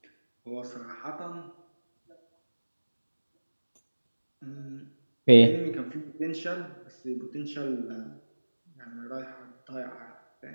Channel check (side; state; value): both; inverted; correlation -1.00